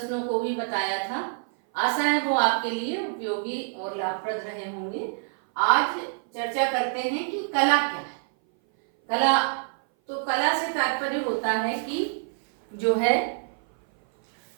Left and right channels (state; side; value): silent; left; 58 dB below the other